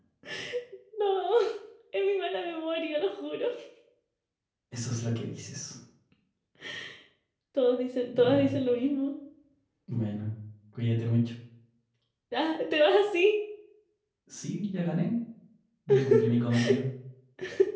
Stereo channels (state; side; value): identical; both; correlation 1.00